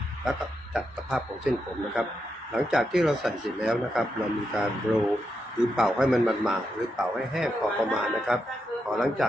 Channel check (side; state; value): both; normal; correlation 0.84